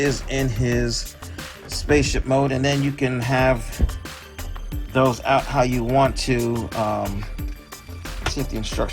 in his spaceship mode. And then you can have those out how you want to. Let's see if the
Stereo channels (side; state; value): both; identical; correlation 1.00